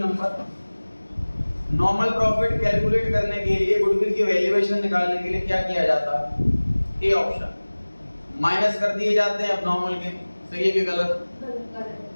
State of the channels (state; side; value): inverted; both; correlation -1.00